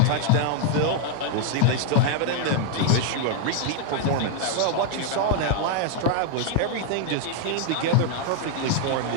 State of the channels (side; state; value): both; different; correlation 0.00